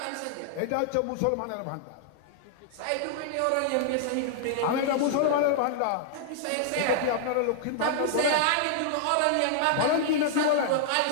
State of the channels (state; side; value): different; both; correlation -0.01